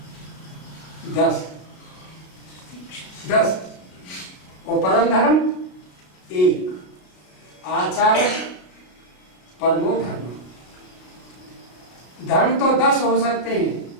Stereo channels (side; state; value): right; late; 33 ms